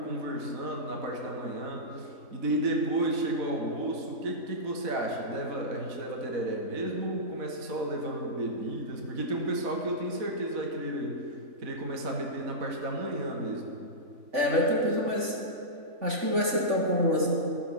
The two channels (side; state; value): left; late; 3.5 ms